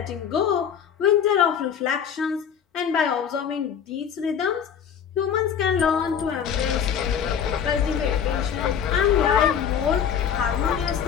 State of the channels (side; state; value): right; quieter; 8.1 dB